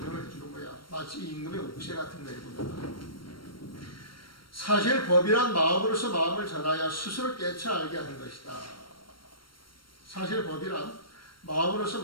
해주는 거야. 마치 임금의 옥새 같은 거이군요. 사실 법이란 마음으로서 마음을 전하여 스스로 깨쳐 알게 하는 것이다. 사실 법이란 마음으로서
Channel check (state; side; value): late; right; 0.73 ms